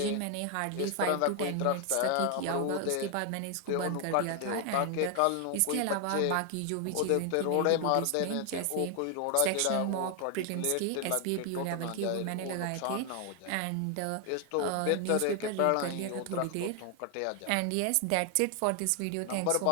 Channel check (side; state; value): both; different; correlation 0.00